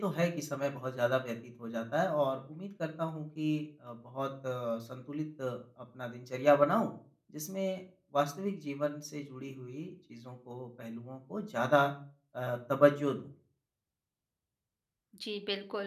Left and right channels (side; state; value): both; identical; correlation 1.00